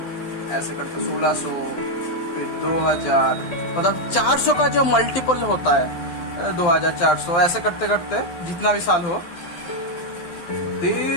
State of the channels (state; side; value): late; right; 12 ms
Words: ऐसे करके 1600, फिर 2000, मतलब 400 का जो मल्टीपल होता है 2400, ऐसे करते करते जितना भी साल हो,